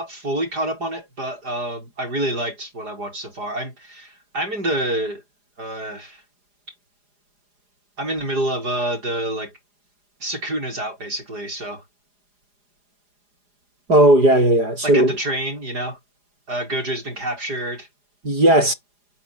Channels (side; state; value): left; late; 4.9 ms